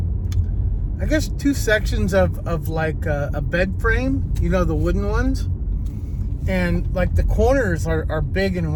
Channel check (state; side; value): identical; both; correlation 1.00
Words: sections of like a bed frame, the wooden ones. And like the corners are big